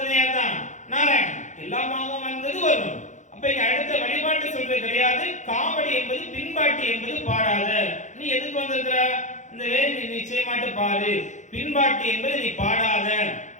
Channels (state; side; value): late; right; 0.35 ms